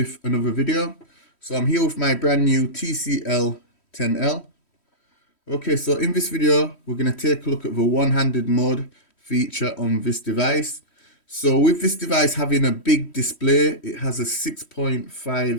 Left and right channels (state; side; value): late; right; 3.1 ms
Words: another video. So I'm here with my brand new TCL 10L. Okay, so in this video, we're going to take a look at the one-handed mode feature on this device. So with this device having a big display, it has a